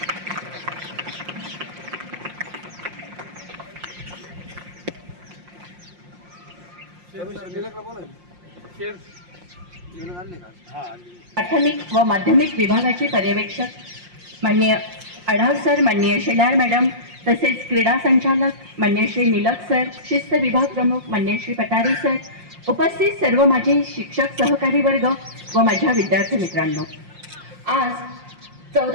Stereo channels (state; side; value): late; left; 5.6 ms